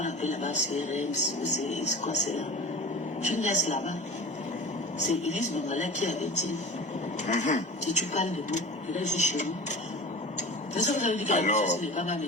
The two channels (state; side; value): normal; both; correlation 0.36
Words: appelle là-bas CRM, c'est quoi c'est là? Tu me laisses là-bas. C'est Elise Bangala qui avait dit, si tu parles de nous, je vais chez nous. C'est ça que vous avez dit que la maison n'est pas ma